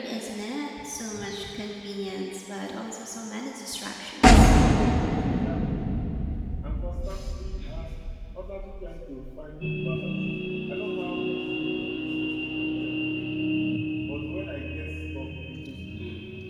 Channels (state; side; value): identical; both; correlation 1.00